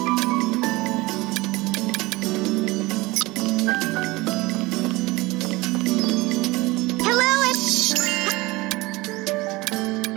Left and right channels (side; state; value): left; quieter; 21.7 dB